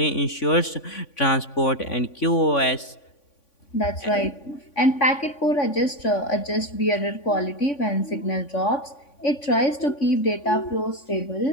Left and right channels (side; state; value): right; late; 3.5 ms